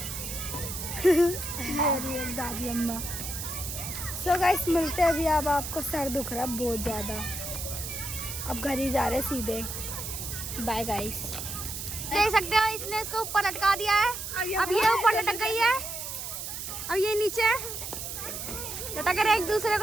ये एक दादी अम्मा। सो गाइस मिलते हैं अभी। अब आपको सर दुख रहा है बहुत ज़्यादा, अब घर ही जा रहे सीधे। Bye guys. देख सकते हो इसने इसको ऊपर लटका दिया है, अब ये ऊपर लटक गई है, अब ये नीचे लटक रहे, एक दूसरे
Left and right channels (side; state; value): right; noise; hiss, 6 dB below the sound